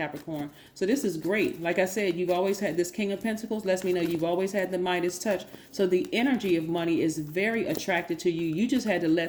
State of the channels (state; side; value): identical; both; correlation 1.00